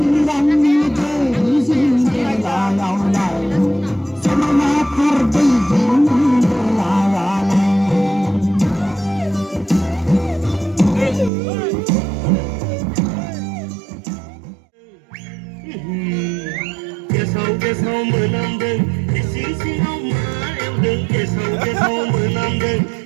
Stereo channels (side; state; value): left; drops out; at 11.3 s